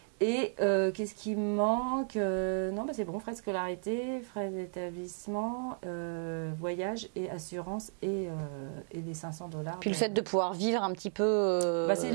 Et qu'est-ce qui me manque? Non, c'est bon, frais de scolarité, frais d'établissement, voyage et assurance et les $500. Puis le fait de pouvoir vivre un petit peu... c'est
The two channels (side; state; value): left; silent; digital silence